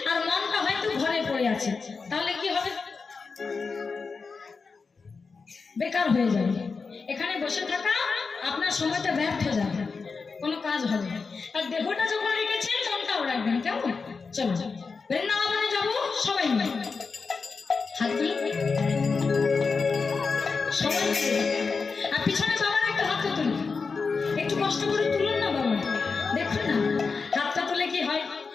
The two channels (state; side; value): quieter; right; 4.7 dB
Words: আর মনটা হয়তো ঘরে পড়ে আছে, তাহলে কি হবে? বেকার হয়ে যাবে। এখানে বসে থাকা আপনার সময়টা ব্যর্থ যাবে, কোনো কাজ হবে না। আর দেহটা যখন রেখেছেন মনটাও রাখবেন, কেমন? চলো বৃন্দাবনে যাবো সবাই মিলে, হাত তুলে সবাই মিলে। আর পিছনে বাবার একটা হাতটা তুলুন, একটু কষ্ট করে তুলুন না বাবা, দেখুন না হাতটা তুলে কি হয়,